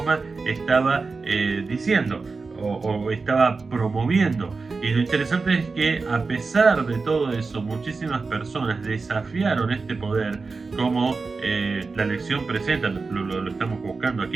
estaba diciendo o estaba promoviendo. Y lo interesante es que a pesar de todo eso, muchísimas personas desafiaron este poder, como la lección presenta, lo estamos buscando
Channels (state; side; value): quieter; left; 4.2 dB